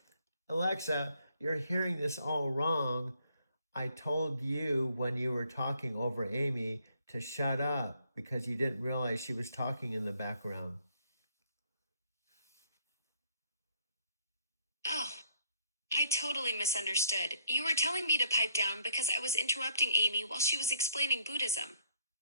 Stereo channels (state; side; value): inverted; both; correlation -0.65